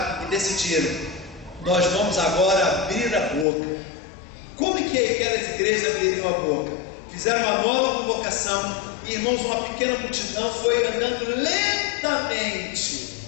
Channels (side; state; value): right; drops out; at 3.5 s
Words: e decidiram: nós vamos agora abrir a boca. Como que aquelas igrejas abririam a boca? Fizeram uma nova convocação, e irmãos, uma pequena multidão foi andando lentamente,